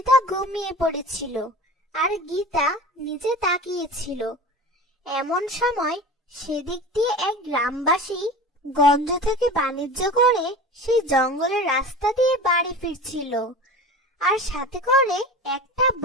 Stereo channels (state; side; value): normal; both; correlation 0.35